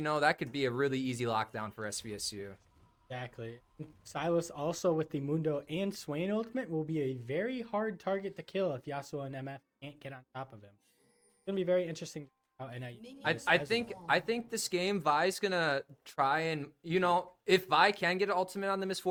could be a really easy lockdown for SVSU. Exactly. Silas also with the Mundo and Swain ultimate will be a very hard target to kill if Yasuo and MF can't get on top of him. It's gonna be very interesting how NIU. I think this game Vi's gonna try and if Vi can get an ultimate on the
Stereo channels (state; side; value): identical; both; correlation 1.00